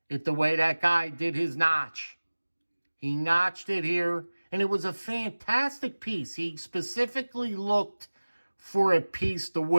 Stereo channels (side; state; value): both; inverted; correlation -1.00